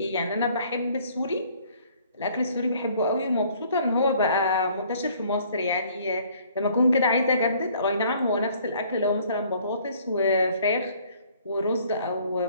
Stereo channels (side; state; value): both; inverted; correlation -0.59